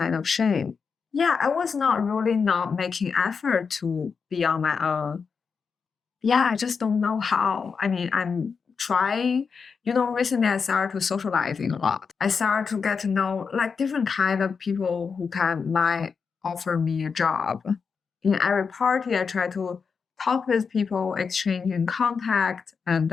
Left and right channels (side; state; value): right; quieter; 5.6 dB